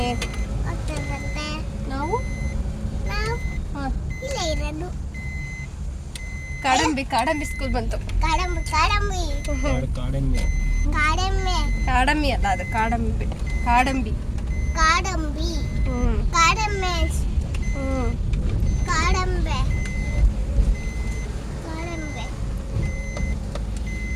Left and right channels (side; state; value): both; identical; correlation 1.00